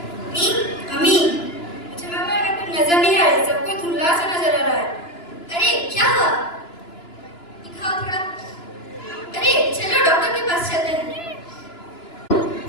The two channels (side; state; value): right; late; 2.9 ms